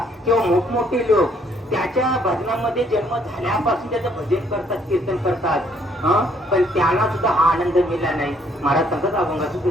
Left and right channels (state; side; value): normal; both; correlation 0.66